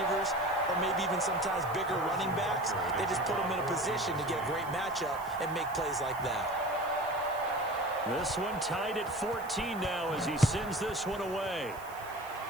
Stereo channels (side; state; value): right; noise; hiss, 20 dB below the sound